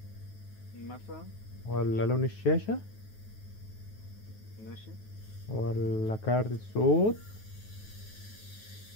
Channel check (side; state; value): right; late; 9.4 ms